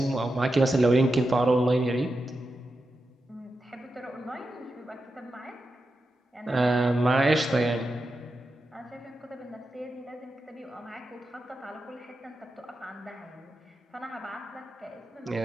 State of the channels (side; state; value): both; normal; correlation 0.89